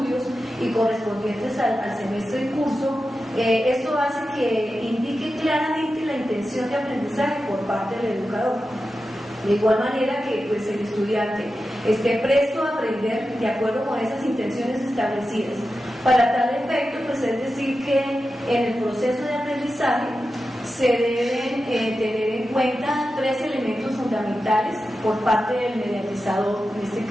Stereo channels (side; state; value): both; normal; correlation 0.91